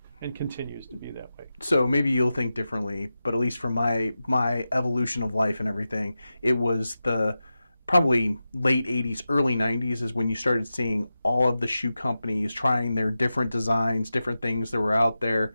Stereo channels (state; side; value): inverted; both; correlation -0.92